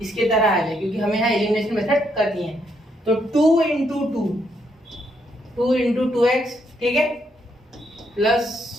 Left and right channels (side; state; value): both; normal; correlation 0.75